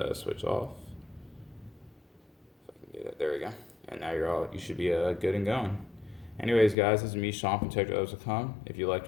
switch off. If I can get it, there we go. And now you should be good and going. Anyways, guys, this is me, Sean from TechRadio.com. If you liked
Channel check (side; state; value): right; drops out; at 6.8 s